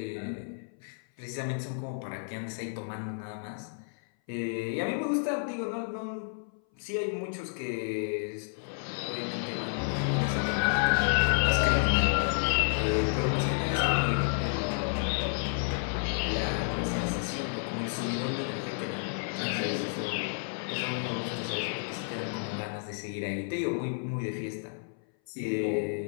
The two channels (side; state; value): right; silent; 57 dB below the other